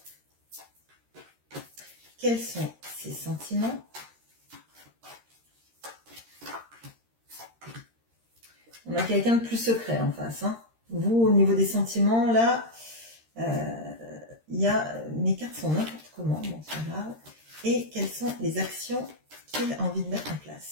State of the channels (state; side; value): late; left; 13 ms